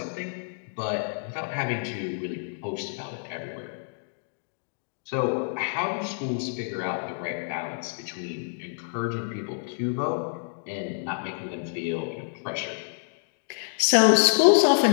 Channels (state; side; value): silent; right; digital silence